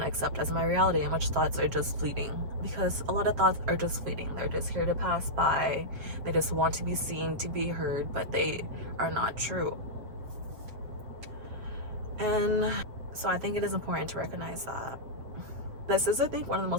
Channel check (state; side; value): late; left; 7.5 ms